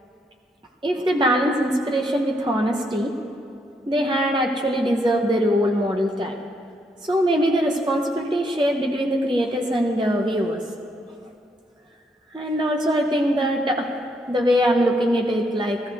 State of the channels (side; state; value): both; normal; correlation 0.75